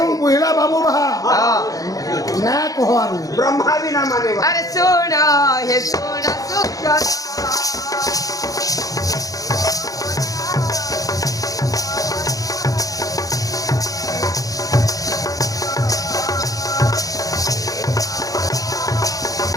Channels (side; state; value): right; late; 0.17 ms